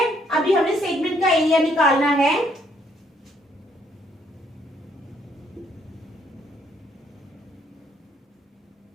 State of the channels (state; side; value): normal; both; correlation 0.68